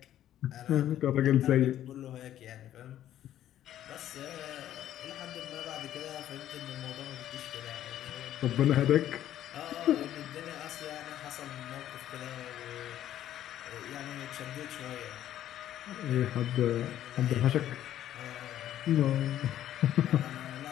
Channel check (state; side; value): quieter; right; 11.9 dB